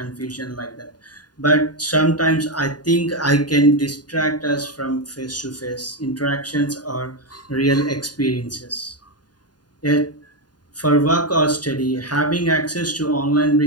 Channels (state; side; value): late; right; 0.70 ms